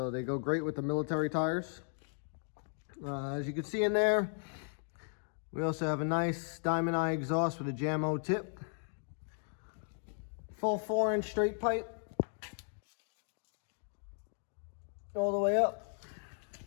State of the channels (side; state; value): right; silent; digital silence